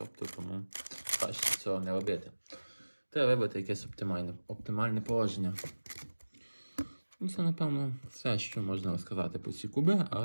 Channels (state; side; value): inverted; both; correlation -1.00